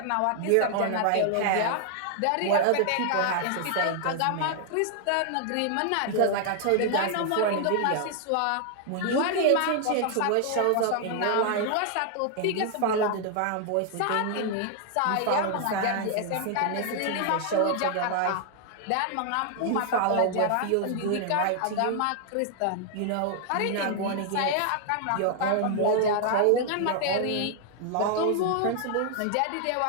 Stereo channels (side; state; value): both; different; correlation 0.00